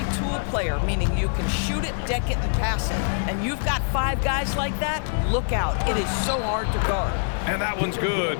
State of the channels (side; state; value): right; silent; digital silence